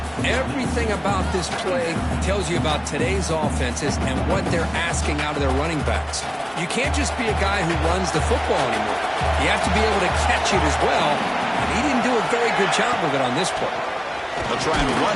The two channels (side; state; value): both; identical; correlation 1.00